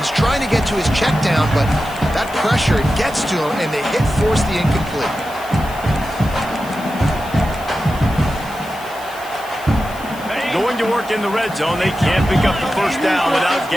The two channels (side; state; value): left; noise; hiss, 19 dB below the sound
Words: trying to get to his check down, but that pressure gets to him, and they force the incomplete. Going to work in the red zone, they can't pick up the first down without